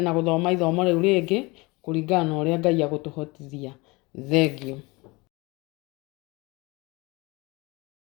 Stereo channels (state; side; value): quieter; right; 24.8 dB